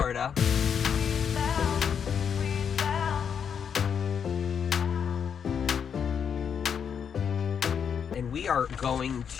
And we are going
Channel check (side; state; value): right; quieter; 7.4 dB